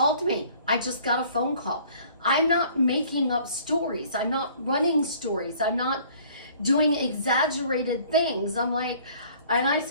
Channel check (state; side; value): inverted; both; correlation -0.54